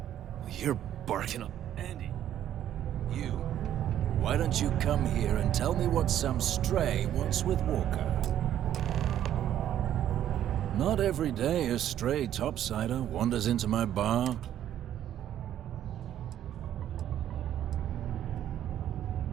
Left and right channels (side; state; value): left; quieter; 11.1 dB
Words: You're barking up. Andy. You. Why don't you come here and tell me what some stray wants with Walker? Not every day a stray topsider wanders into my bar.